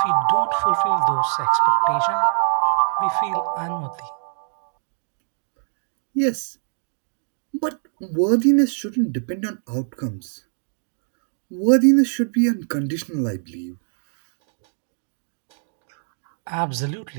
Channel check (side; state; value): left; silent; digital silence